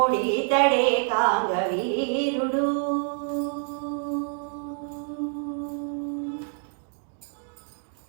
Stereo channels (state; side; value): silent; left; 60 dB below the other